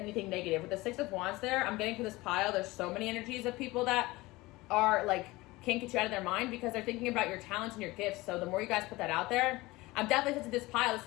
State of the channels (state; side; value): quieter; right; 20.6 dB